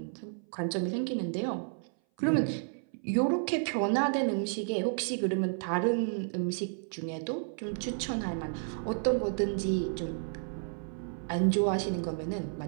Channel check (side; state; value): left; silent; 57 dB below the other